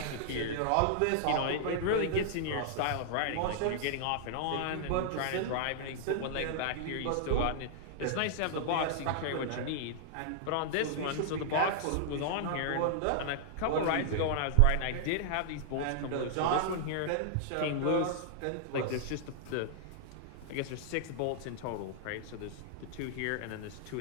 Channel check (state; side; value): different; both; correlation -0.01